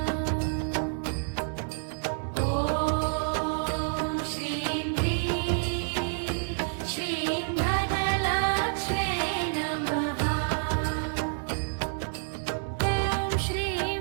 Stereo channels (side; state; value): left; silent; digital silence